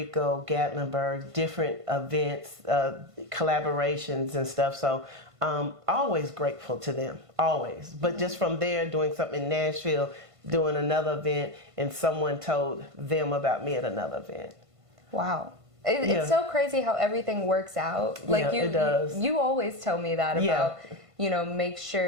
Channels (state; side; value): late; left; 1.5 ms